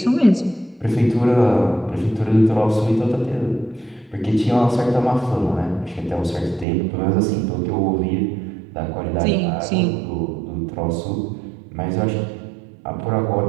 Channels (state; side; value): drops out; left; at 6.7 s